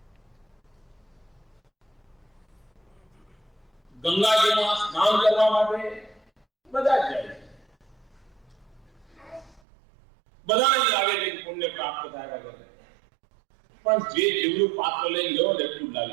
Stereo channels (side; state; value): left; drops out; at 9.6 s